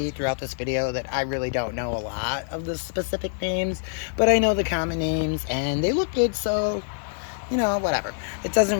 throughout this video that I really don't know a lot of the specific names. But I know the common names, and they look good, so, you know, whatever. It doesn't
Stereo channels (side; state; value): right; silent; digital silence